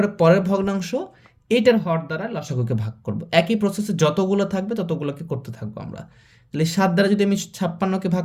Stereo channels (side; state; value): both; identical; correlation 1.00